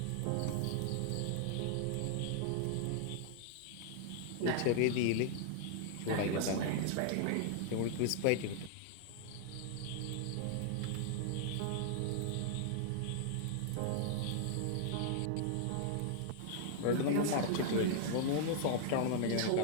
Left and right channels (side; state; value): both; different; correlation -0.01